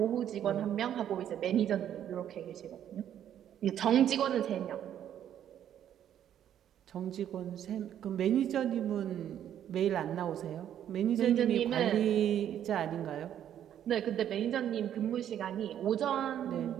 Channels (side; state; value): left; quieter; 10.3 dB